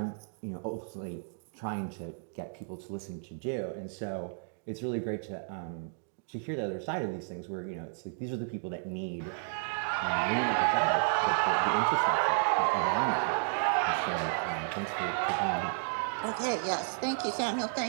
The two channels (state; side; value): silent; left; digital silence